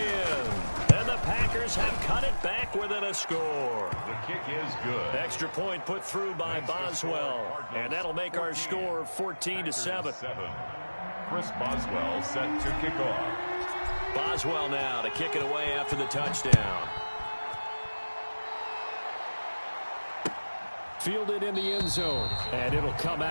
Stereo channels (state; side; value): inverted; both; correlation -1.00